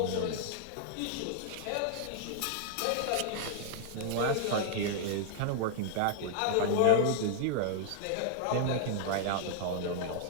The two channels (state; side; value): different; both; correlation -0.01